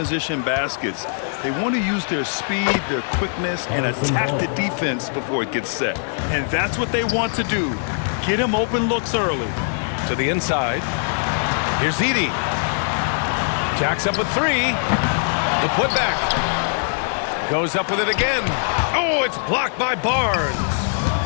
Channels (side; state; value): right; silent; digital silence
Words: baskets. They want to use their speed, their quickness, and attack the defense before it gets set. And that's what they want to do. Get them open looks early. To the inside. Here's Edey. Jacks up with three. The putback. Goes up with it again. Oh, it's blocked by Barnes.